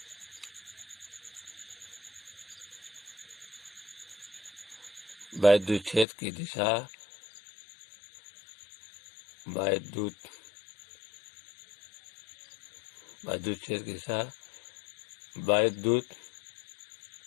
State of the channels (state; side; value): drops out; right; at 6.1 s